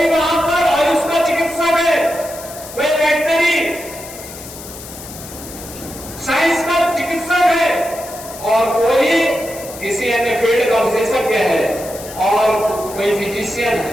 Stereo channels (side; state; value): left; noise; hiss, 14 dB below the sound